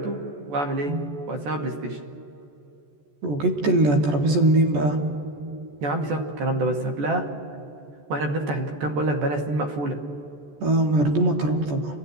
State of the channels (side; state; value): left; late; 14 ms